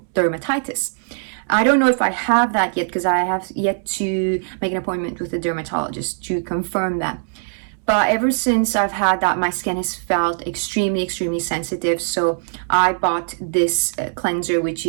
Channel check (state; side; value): silent; left; 65 dB below the other